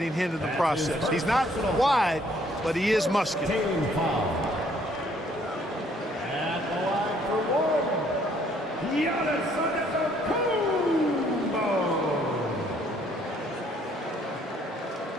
hit in the process. He's not wide, but he is muscular. At the line for one, Antetokounmpo.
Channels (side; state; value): both; normal; correlation 0.64